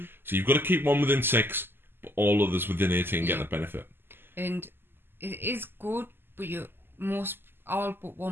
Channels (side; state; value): left; late; 0.10 ms